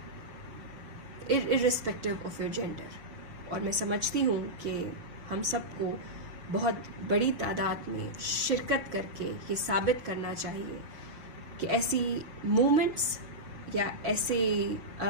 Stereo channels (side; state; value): left; late; 6.2 ms